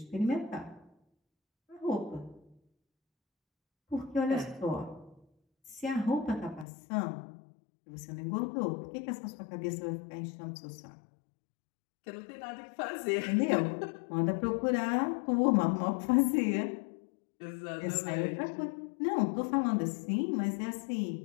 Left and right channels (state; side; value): drops out; right; at 6.7 s